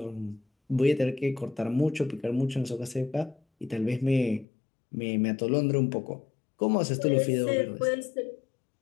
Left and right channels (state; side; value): drops out; right; at 4.5 s